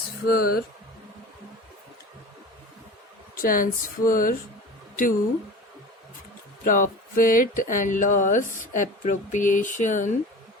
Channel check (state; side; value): normal; both; correlation 0.36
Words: to profit and loss appropriation